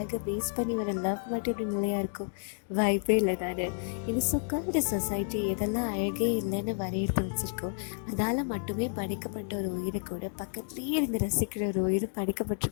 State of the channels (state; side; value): silent; right; 57 dB below the other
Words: பேஸ் பண்ணி வர லவ் மட்டும் இப்படி நிலையாக இருக்கும்? வாய்ப்பே இல்லை தானே. இது சொக்கால்டு சொசைட்டி எதெல்லாம் அழகே இல்லைன்னு வரையறுத்து வச்சுருக்கோம். அதால் மட்டுமே படைக்கப்பட்ட ஒரு உயிரை கூட பக்கத்துலேயே இருந்து ரசிக்கிற ஒரு உயிர்